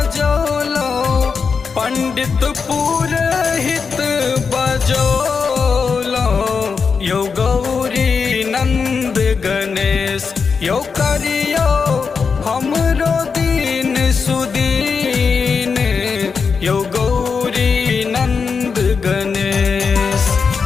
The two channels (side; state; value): right; quieter; 5.5 dB